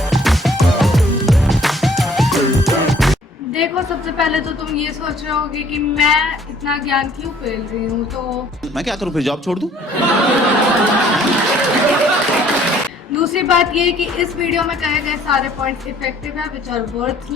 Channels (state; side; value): normal; both; correlation 0.58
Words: देखो, सबसे पहले तो तुम ये सोच रहे होगे कि मैं इतना ज्ञान क्यों पेल रही हूँ, तो मैं क्या करूँ, फिर जॉब छोड़ दूँ? दूसरी बात ये है कि इस वीडियो में कहे गए सारे पॉइंट्स इफेक्टिव है विच आर वर्थ